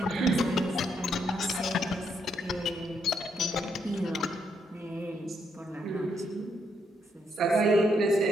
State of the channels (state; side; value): normal; both; correlation 0.76